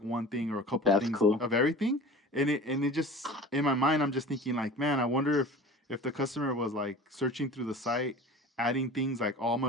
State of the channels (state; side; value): normal; both; correlation 0.39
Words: one thing or a couple That's things cool. of everything. And it just, in my mind, I'm just thinking like, man, I wonder if the customer was like searching through the site, adding things like, oh, I'm